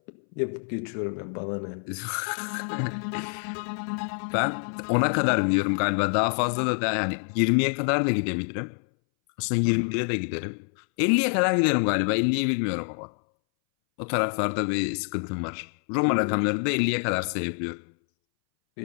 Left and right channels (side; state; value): right; silent; 61 dB below the other